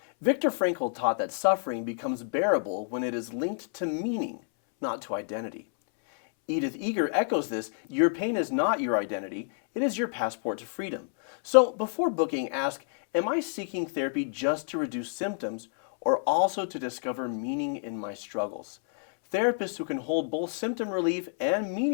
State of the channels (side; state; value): right; silent; 59 dB below the other